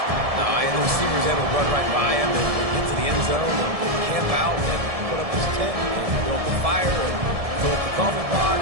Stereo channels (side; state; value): left; late; 1.7 ms